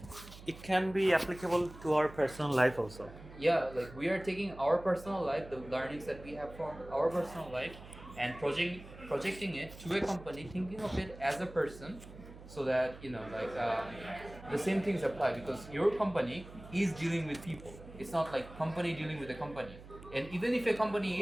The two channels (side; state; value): right; noise; hum, 17 dB below the sound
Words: It can be applicable to our personal life also. Yeah, like we are taking our personal life, the learnings that we have from our personal life, and projecting it to a company, thinking of it as a person, so that the same things apply, because your company is dealing with people. It's not like company dealing with a company. And even if a